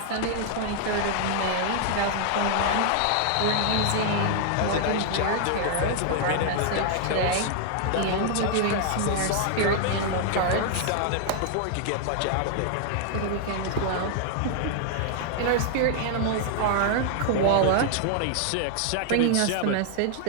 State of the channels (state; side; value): different; both; correlation 0.00